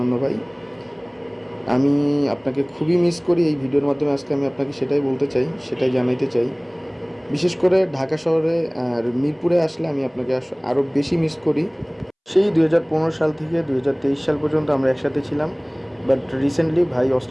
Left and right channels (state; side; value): identical; both; correlation 1.00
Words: ভাই। আমি আপনাকে খুবই মিস করি। এই ভিডিওর মাধ্যমে আজকে আমি আপনাকে সেটাই বলতে চাই, সেটাই জানাইতে চাই। বিশেষ করে ঢাকা শহরে আর মিরপুরে আসলে আমি আপনাকে আরও বেশি মিস করি। সেই 2015 সাল থেকে 2023 সাল পর্যন্ত আমরা একসাথে ছিলাম, বাট রিসেন্টলি ভাই